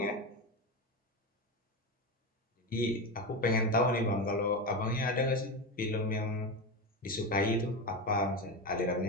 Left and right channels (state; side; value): normal; both; correlation 0.18